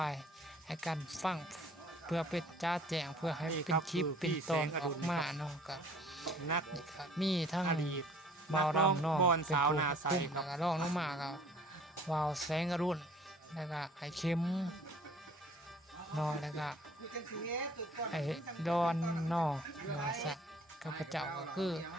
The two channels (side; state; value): both; normal; correlation 0.53